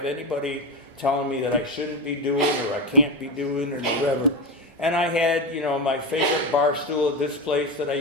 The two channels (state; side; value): normal; both; correlation 0.17